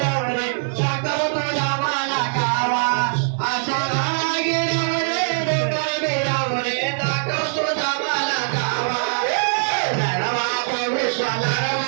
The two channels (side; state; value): left; silent; digital silence